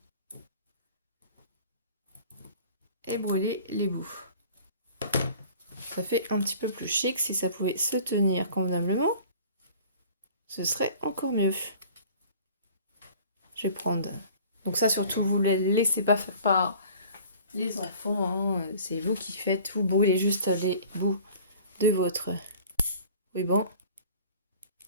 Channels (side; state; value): both; inverted; correlation -0.48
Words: Et brûler les bouts. Ça fait un petit peu plus chic. Si ça pouvait se tenir convenablement, ce serait encore mieux. Je vais prendre... Donc ça, surtout, vous ne laissez pas par les enfants. Hein. C'est vous qui faites. Vous brûlez juste les bouts de votre ruban.